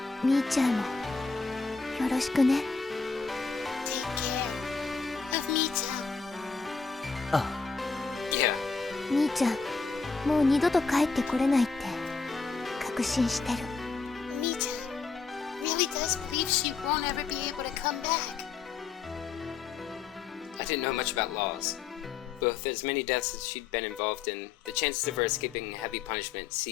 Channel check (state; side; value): quieter; right; 4.9 dB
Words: みーちゃんもよろしくね。 Take care of Mi-chan. あ、 Yeah, みーちゃん、もう二度と帰ってこれないって確信してる。 Mi-chan really does believe she won't ever be able to come back. I didn't know much about laws. But with as many deaths as she'd been involved in, the chances of her escaping heavy punishment